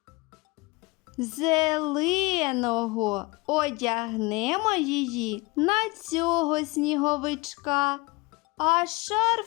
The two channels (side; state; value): right; quieter; 24.8 dB